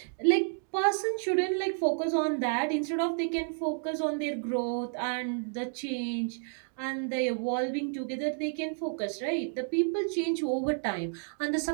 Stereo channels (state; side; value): silent; left; 57 dB below the other